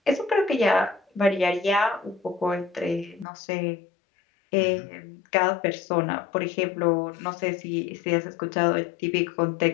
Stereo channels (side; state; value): right; drops out; at 3.2 s